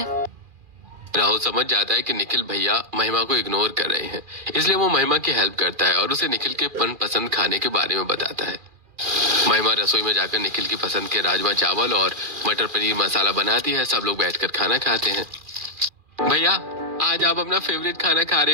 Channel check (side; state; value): left; late; 2.4 ms